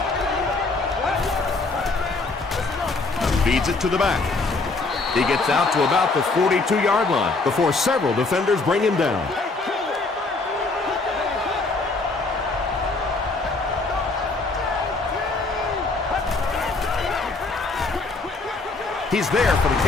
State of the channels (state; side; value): quieter; right; 3.6 dB